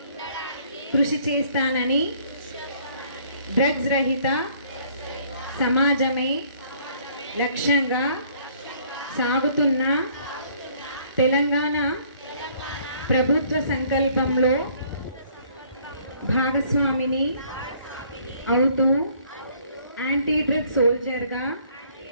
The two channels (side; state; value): both; inverted; correlation -0.61